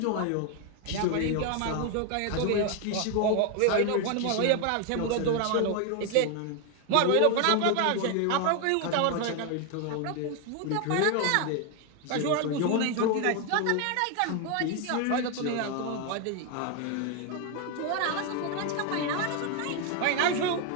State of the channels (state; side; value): different; both; correlation 0.01